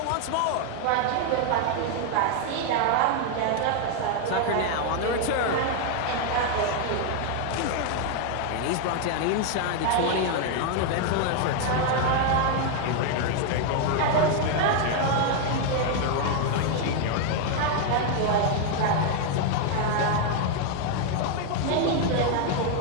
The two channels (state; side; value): different; both; correlation 0.01